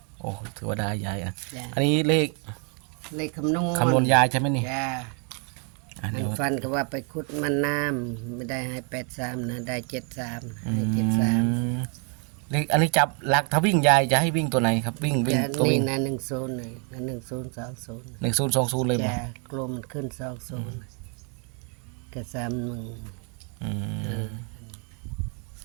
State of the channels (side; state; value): left; quieter; 38.7 dB